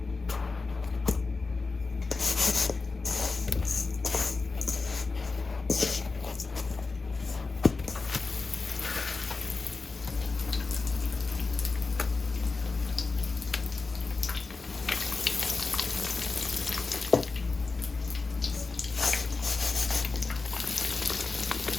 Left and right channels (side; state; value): right; quieter; 4.0 dB